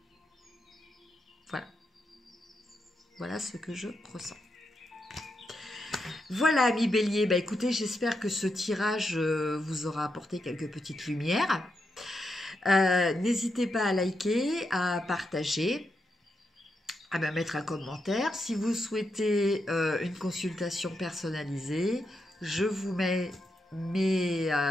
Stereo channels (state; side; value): normal; both; correlation 0.84